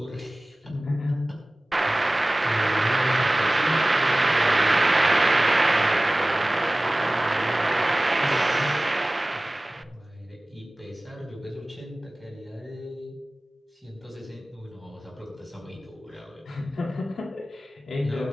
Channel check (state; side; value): normal; both; correlation 0.98